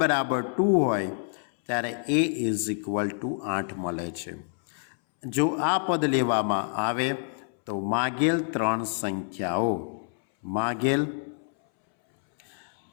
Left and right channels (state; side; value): silent; right; 60 dB below the other